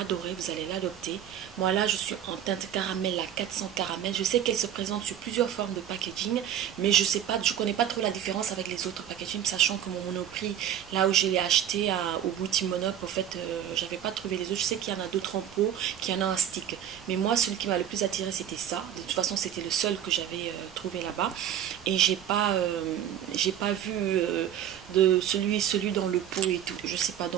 vous allez l'adopter. Moi là, je suis en teinte caramel, la 400 caramel. Je sais qu'elle se présente sur plusieurs formes de packaging, mais je connais pas trop la différence avec les autres packaging, sachant que mon Monoprix, là où je l'ai acheté au boutique Monop, en fait, j'avais pas trouvé les autres. Je sais qu'il y en a d'autres en pot, qu'il y en a un stick. Mais moi, celui qui m'a le plus attiré, c'était ça. De toute façon, c'était le seul que j'avais trouvé là-bas. Et j'ai pas vu de celui dans le pot et tout. Je sais pas,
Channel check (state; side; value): quieter; left; 10.0 dB